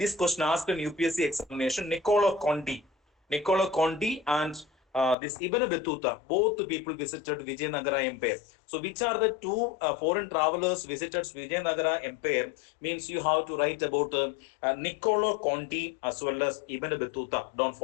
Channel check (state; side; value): drops out; right; at 5.2 s